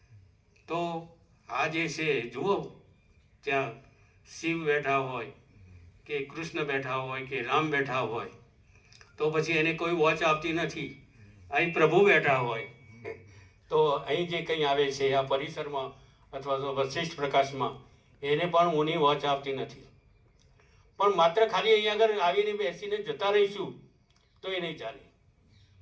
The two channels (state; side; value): identical; both; correlation 1.00